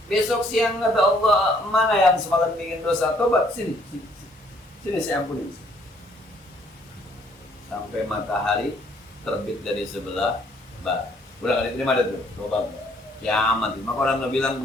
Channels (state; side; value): normal; both; correlation 0.64